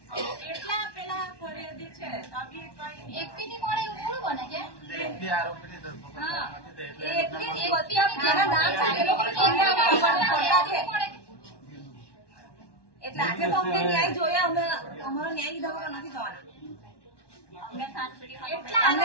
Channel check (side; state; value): right; late; 1.1 ms